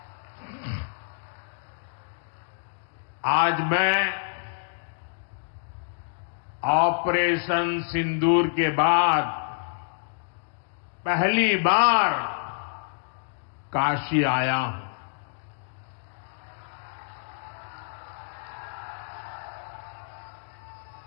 आज मैं ऑपरेशन सिंदूर के बाद पहली बार काशी आया हूं।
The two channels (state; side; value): silent; right; digital silence